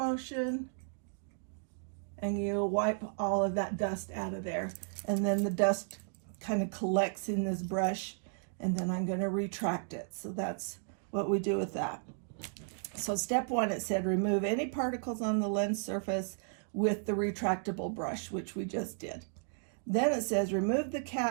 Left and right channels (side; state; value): left; silent; digital silence